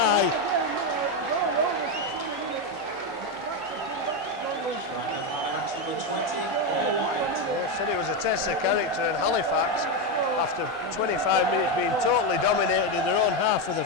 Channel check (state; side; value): normal; both; correlation 0.09